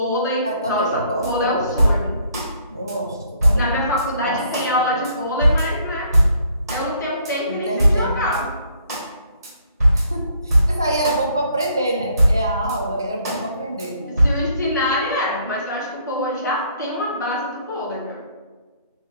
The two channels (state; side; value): inverted; both; correlation -0.66